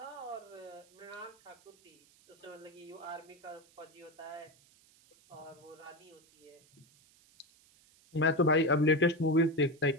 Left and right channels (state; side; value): noise; right; hiss, 29 dB below the sound